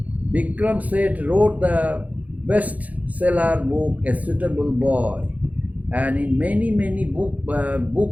Bikram Seth wrote the bestseller book, A Suitable Boy. And in many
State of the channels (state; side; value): late; left; 0.075 ms